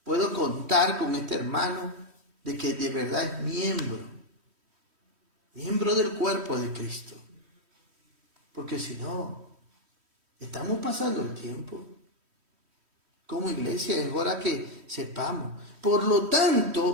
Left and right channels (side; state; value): left; late; 3.1 ms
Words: puedo contar con este hermano de que de verdad es miembro del cuerpo de Cristo. Porque si no, estamos pasando el tiempo. como iglesia, es hora que sepamos. Por lo